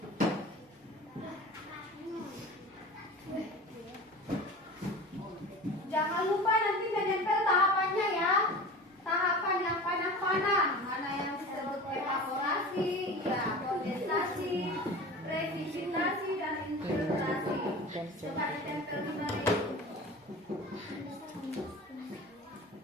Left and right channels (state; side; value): normal; both; correlation 0.36